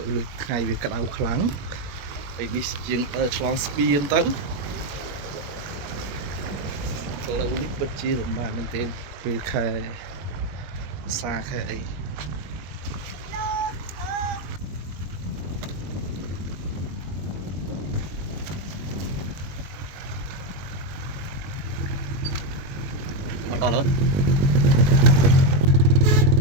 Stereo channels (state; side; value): late; left; 21 ms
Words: ោះថ្ងៃវាក្តៅខ្លាំងហើយនេះយើងដើរឆ្លងស្ពានទៅផ្លូវនេះពិតជាលំបាកមែនទែនពេលខែសាខែអីមកដល់ហើយ